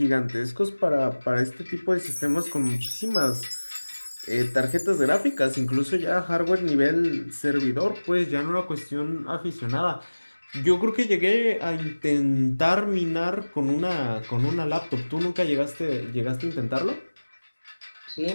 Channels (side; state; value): both; inverted; correlation -1.00